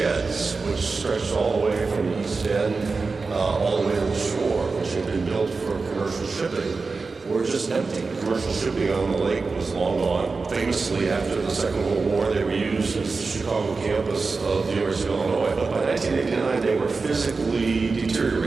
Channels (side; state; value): left; quieter; 4.2 dB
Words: which stretched all the way from the East End all the way to the shore, which had been built for commercial shipping, were just empty. Commercial shipping on the lake was long gone. Famously, after the Second World War, they were used as the Chicago campus of the University of Illinois. But by 1989, they were physically